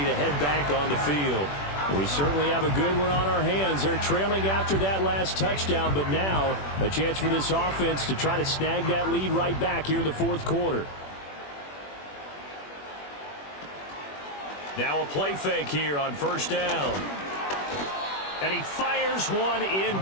head back on the field. We certainly have a good one on our hands. They're trailing after that last touchdown, but now a chance for this offense to try to snag that lead right back here in the 4th quarter. Now a play fake here on 1st down. And he fires one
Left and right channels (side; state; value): right; late; 21 ms